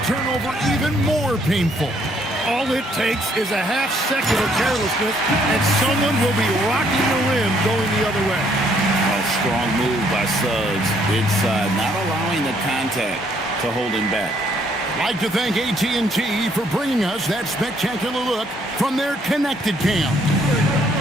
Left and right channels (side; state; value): both; normal; correlation 0.68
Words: turnover even more painful. All it takes is a half second of carelessness, and someone will be rocking the rim going the other way. A strong move by Suggs inside, not allowing the contact to hold him back. I'd like to thank AT&T for bringing us that spectacular look from their connected cam.